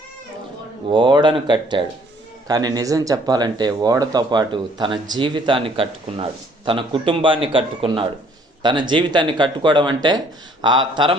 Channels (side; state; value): both; normal; correlation 0.61